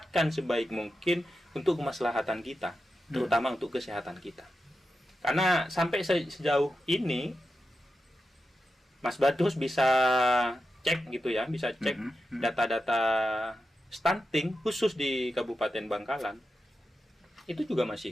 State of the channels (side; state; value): both; normal; correlation 0.90